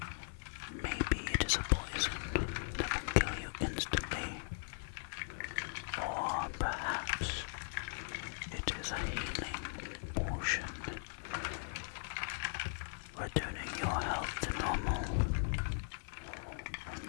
Maybe it is a poison that will kill you instantly. Or perhaps it is a healing potion, returning your health to normal on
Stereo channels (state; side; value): silent; right; digital silence